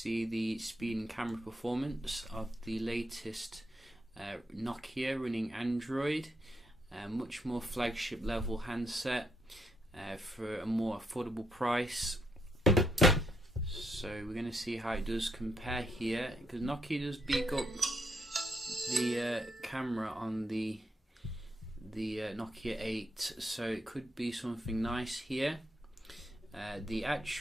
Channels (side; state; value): both; normal; correlation 0.78